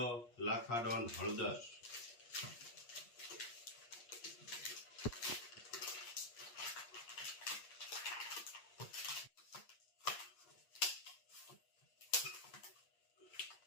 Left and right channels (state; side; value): late; right; 8.5 ms